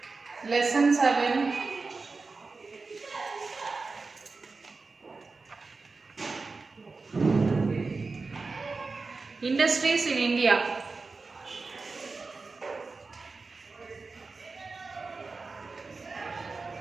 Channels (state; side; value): quieter; left; 4.1 dB